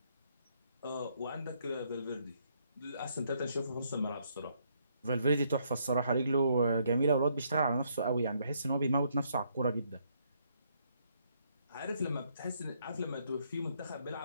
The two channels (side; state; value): both; inverted; correlation -0.71